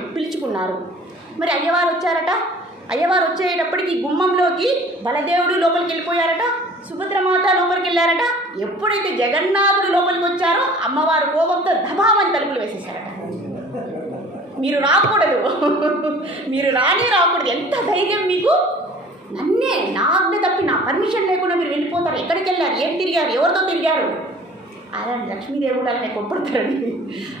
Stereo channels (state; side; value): normal; both; correlation 0.48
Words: మరి అయ్యవారు వచ్చారట. అయ్యవారు వచ్చేటప్పటికి గుమ్మంలోకి బలదేవుడు లోపలికి వెళ్ళిపోయారట, సుభద్రమాత లోపలికి వెళ్ళారట. ఎప్పుడైతే జగన్నాథుడు లోపలికి వచ్చారో అమ్మవారు కోపంతో దబామని తలుపులు వేసేసారట. మీరు రాకూడదు, మీరు రాకూడదు. ఎంత ధైర్యం మీకు! నన్నే, నా ఆజ్ఞ తప్పి, నా పర్మిషన్ లేకుండా మీరు వెళ్ళిపోతారు. ఎక్కడికి వెళ్ళారు, ఏం తిరిగారు, ఎవరితో తిరిగారు? అలాంటి లక్ష్మీదేవుడు అలానే కొప్పడతారండి,